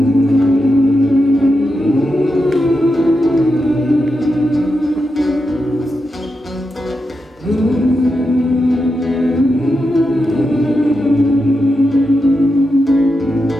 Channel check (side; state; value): both; normal; correlation 0.87